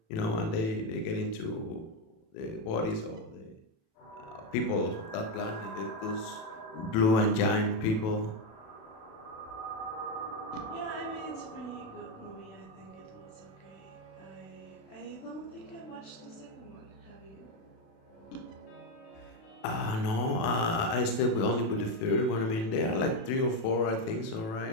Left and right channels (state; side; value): late; right; 36 ms